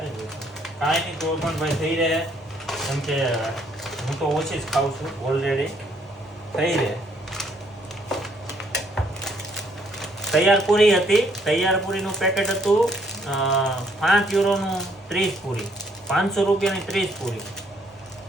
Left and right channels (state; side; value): normal; both; correlation 0.68